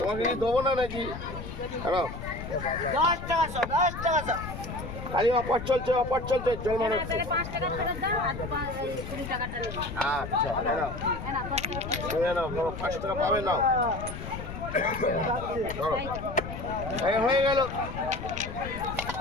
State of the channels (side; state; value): left; noise; rumble, 9 dB below the sound